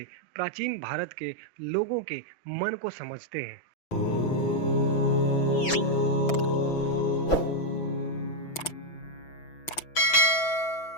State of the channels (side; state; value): right; late; 6.0 ms